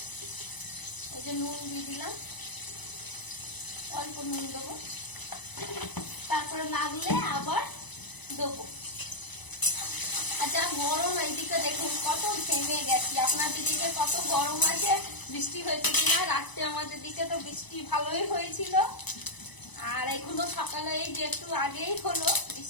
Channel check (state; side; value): late; right; 1.0 ms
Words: এই যে নুন দিয়ে দিলাম, অল্প নুন দেবো, তারপরে লাগলে আবার দেবো। আর যা গরম, এইদিকে দেখুন কত ঘেমে গেছি। আপনাদের দিকে কত গরম আছে, বৃষ্টি হয়েছে কিনা? রাত্রে আমাদের দিকে তো বৃষ্টি ভালোই হয়েছিল। আর এখনো সকালে এই যে একটু আগেই হলো